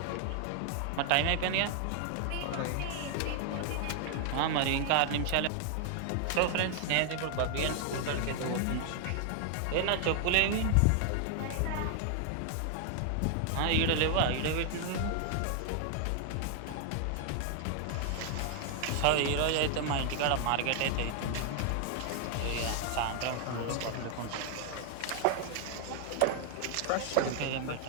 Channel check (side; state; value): both; different; correlation 0.00